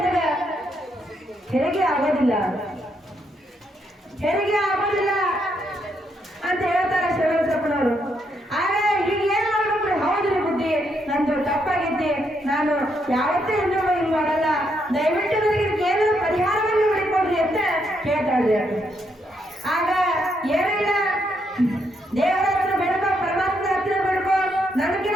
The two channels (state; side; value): normal; both; correlation 0.77